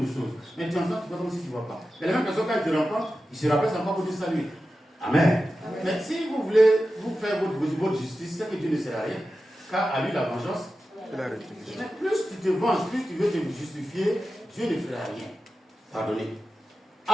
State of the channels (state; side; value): normal; both; correlation 0.93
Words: de choses. Mais tu entends, tu vois comme si tu ne vois pas. Et les mêmes personnes, quand ils te rencontrent, ils se rappellent encore pour dire salut. Amen. Amen. Mais si vous voulez vous faire votre justice, c'est que Dieu ne sert à rien. Car à lui, la vengeance. Mais plus tu te venges, plus tu veux te justifier, Dieu ne fera rien. Pardonnez.